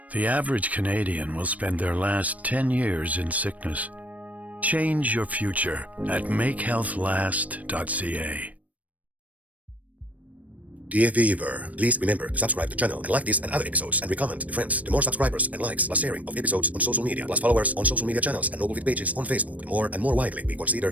The average Canadian will spend their last 10 years in sickness. Change your future at makehealthlast.ca. Dear viewer, please remember to subscribe to the channel and like this and other episodes and recommend to friends. The more subscribers and likes plus sharing of episodes on social media plus followers on social media channels and Noblefit pages on Facebook, the more and more widely we consider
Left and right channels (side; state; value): left; late; 0.070 ms